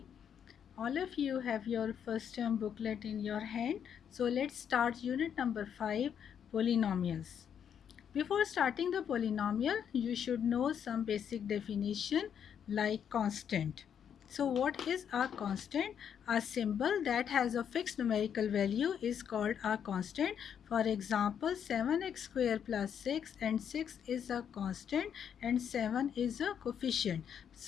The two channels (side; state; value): right; quieter; 8.3 dB